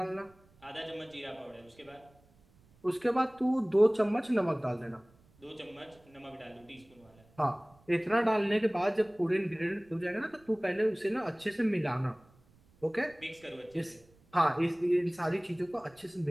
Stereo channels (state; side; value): noise; right; rumble, 30 dB below the sound